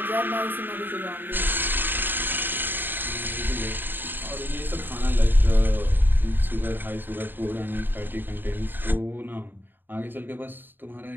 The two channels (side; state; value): left; late; 0.094 ms